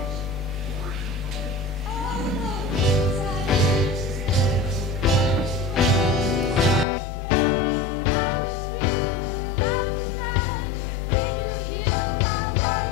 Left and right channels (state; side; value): drops out; right; at 6.9 s